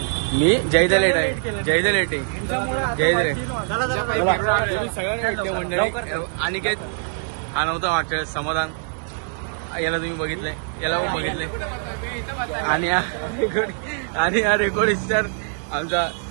मी जयदा लेट आहे. जयदा लेट आहे. जयदा तुम्ही सगळ्यांना भेटले मंडळी. आणि काय हा नव्हता वाटत समाधान, याला तुम्ही बघितलंय, याला पण बघितलंय. आणि हा रेकॉर्ड स्टार आमचा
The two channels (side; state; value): left; silent; 63 dB below the other